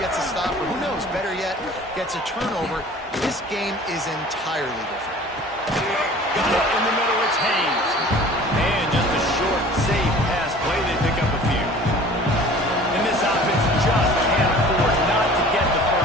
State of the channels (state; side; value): normal; both; correlation 0.46